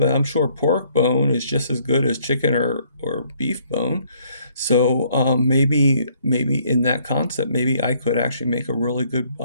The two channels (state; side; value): inverted; both; correlation -0.65